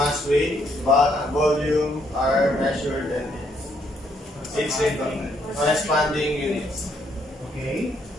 weight, volume are measured and its corresponding units. Okay.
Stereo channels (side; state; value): both; normal; correlation 0.72